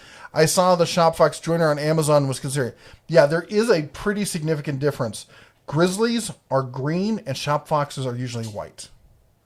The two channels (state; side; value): identical; both; correlation 1.00